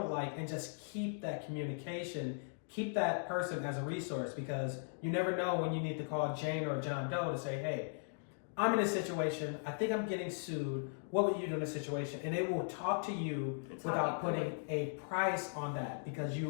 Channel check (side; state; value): right; silent; digital silence